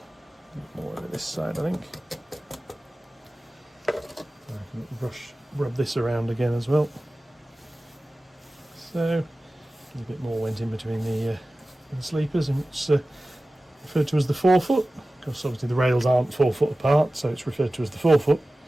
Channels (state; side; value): normal; both; correlation 0.96